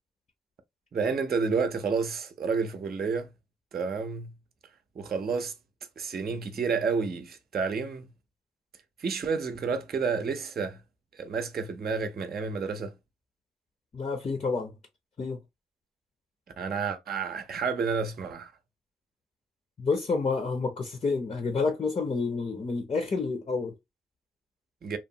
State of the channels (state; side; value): normal; both; correlation 0.63